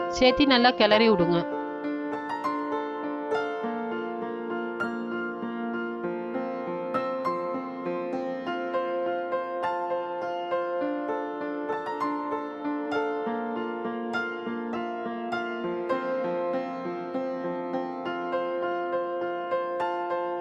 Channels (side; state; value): both; identical; correlation 1.00